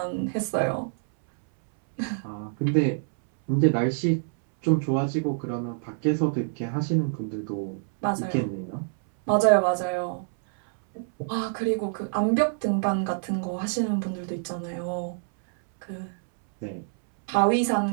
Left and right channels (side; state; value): left; silent; 61 dB below the other